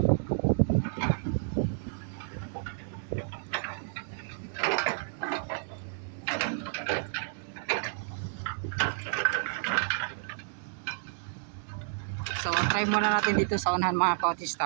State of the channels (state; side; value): silent; left; digital silence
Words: So try muna natin dito sa unahan mga cottage,